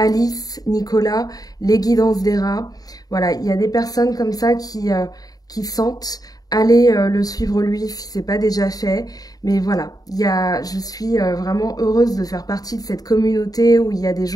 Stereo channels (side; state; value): right; late; 0.18 ms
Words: Nicolas, les guidances des rats. Voilà, il y a des personnes comme ça qui sentent. Allez le suivre lui si ce n'est pas déjà fait. Mais voilà, je suis vraiment heureuse de faire partie de cette communauté où il y a des